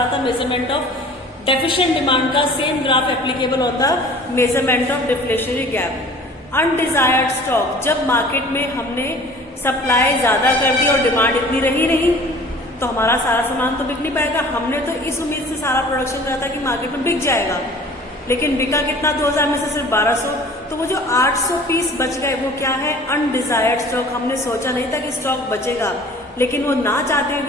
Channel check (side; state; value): both; normal; correlation 0.47